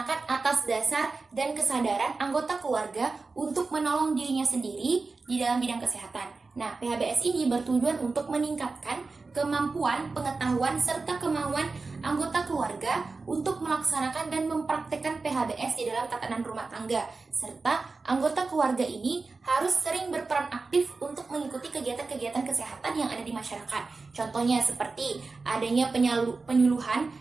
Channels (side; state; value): left; quieter; 4.0 dB